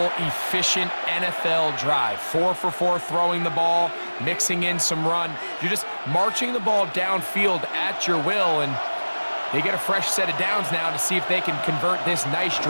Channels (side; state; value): both; inverted; correlation -1.00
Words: efficient NFL drive. 4 for 4 throwing the ball, mixing in some run. You're just marching the ball downfield at your will, and they get a fresh set of downs now to see if they can convert this nice